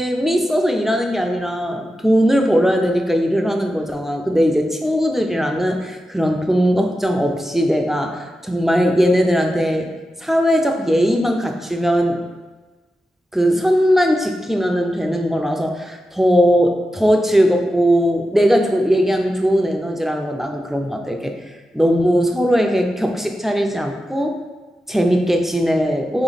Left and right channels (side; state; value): both; normal; correlation 0.91